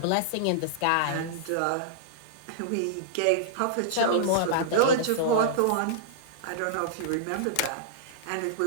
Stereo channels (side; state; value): both; different; correlation -0.02